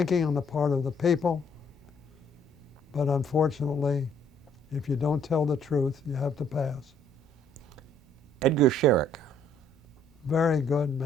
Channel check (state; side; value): normal; both; correlation 0.64